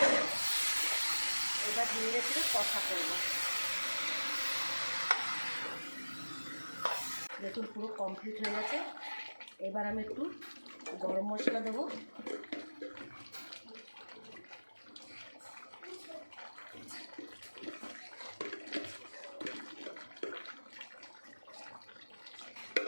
এবার ধীরে ধীরে কষা করবো। দেখুন পুরো কমপ্লিট হয়ে গেছে। এবার আমি একটু গরম মশলা দেবো,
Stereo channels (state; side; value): inverted; both; correlation -1.00